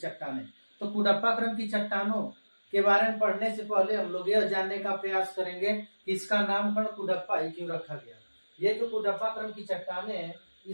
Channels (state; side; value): inverted; both; correlation -1.00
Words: तो कुडप्पा क्रम की चट्टानों के बारे में पढ़ने से पहले हम लोग यह जानने का प्रयास करेंगे कि इसका नामकरण कुडप्पा ही क्यों रखा गया। ये जो कुडप्पा क्रम की चट्टानें हैं,